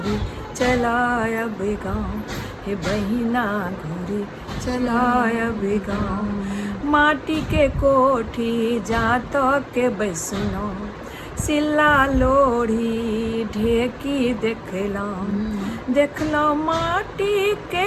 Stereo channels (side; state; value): both; identical; correlation 1.00